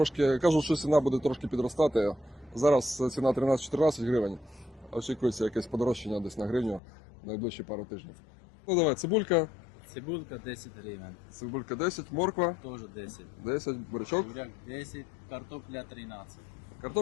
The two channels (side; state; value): right; drops out; at 6.8 s